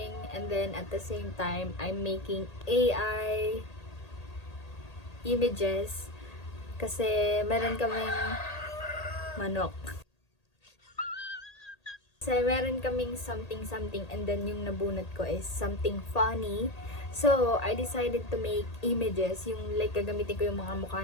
and then at the same time I'm making AI images kasi meron kaming manok. Kasi meron kaming something and then yung nabunot ko is something funny. So, I decided to make images, yung like gagamitin ko yung mga mukha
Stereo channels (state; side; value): late; right; 1.8 ms